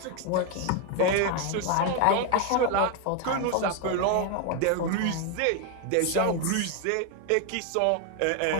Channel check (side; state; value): both; different; correlation 0.01